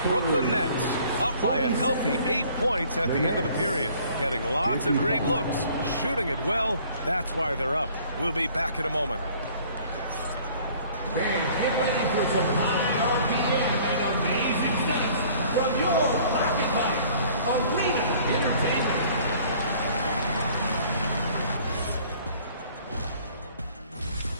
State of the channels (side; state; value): both; inverted; correlation -0.54